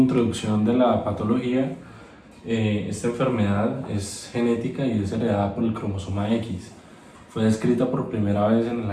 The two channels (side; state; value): both; identical; correlation 1.00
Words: de la patología, esta enfermedad es genética y es heredada por el cromosoma X. Fue descrita por primera vez en el